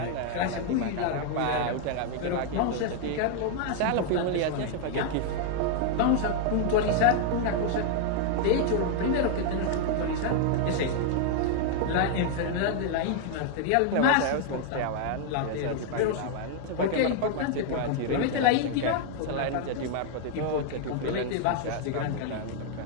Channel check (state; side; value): different; both; correlation 0.00